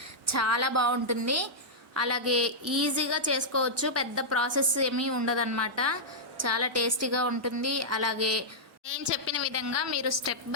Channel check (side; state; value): both; normal; correlation -0.08